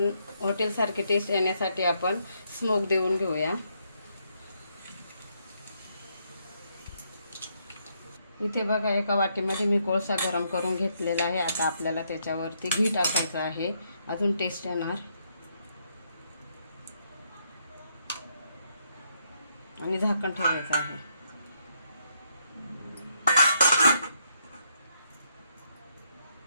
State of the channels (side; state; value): both; inverted; correlation -0.75